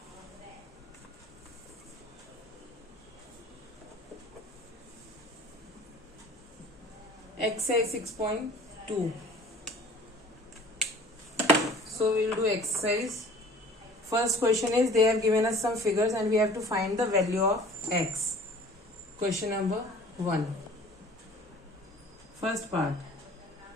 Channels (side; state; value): both; normal; correlation 0.47